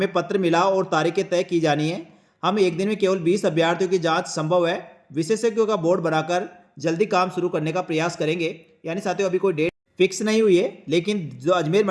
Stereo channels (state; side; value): identical; both; correlation 1.00